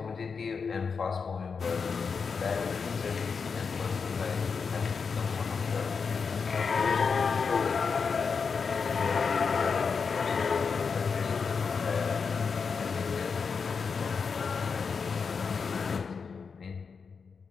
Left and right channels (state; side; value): quieter; right; 5.5 dB